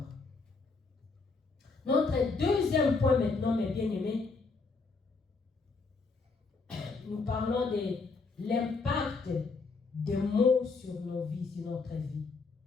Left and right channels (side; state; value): right; quieter; 4.2 dB